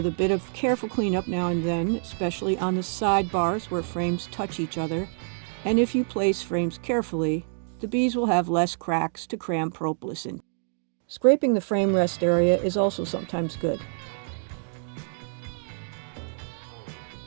a bit of careful cleanup now and then, especially on the side bars where frames touch each other, and if you place frames carefully, the bees will have less cracks to cram propolis in. Scraping the frame rest area is also sometimes good.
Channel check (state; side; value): silent; left; digital silence